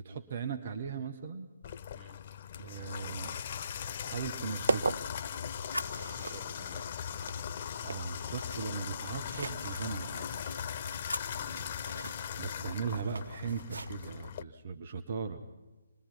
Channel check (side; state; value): both; inverted; correlation -0.68